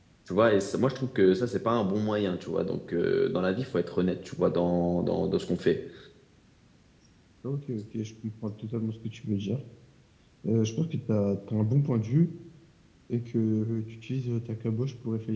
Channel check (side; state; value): both; identical; correlation 1.00